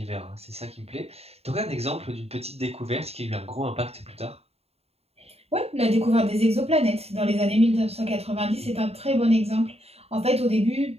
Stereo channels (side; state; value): left; late; 0.30 ms